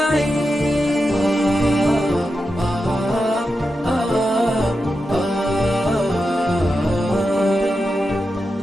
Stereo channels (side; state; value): both; normal; correlation 0.89